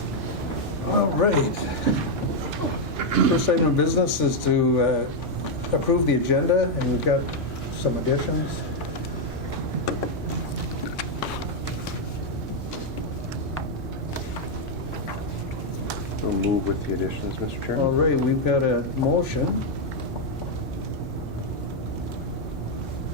All right. First item of business is to approve the agenda, and we've got some additions. We'll move with the additions, Mr. Chairman. All right, we've got a motion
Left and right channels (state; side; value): normal; both; correlation 0.00